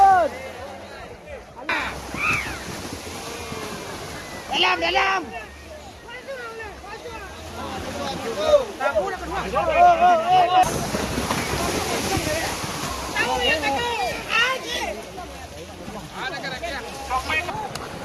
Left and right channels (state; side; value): identical; both; correlation 1.00